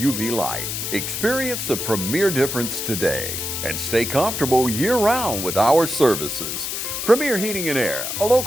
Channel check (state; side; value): noise; left; hiss, 4 dB below the sound